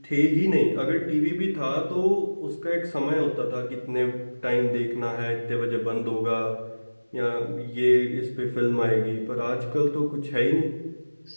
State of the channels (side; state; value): both; inverted; correlation -1.00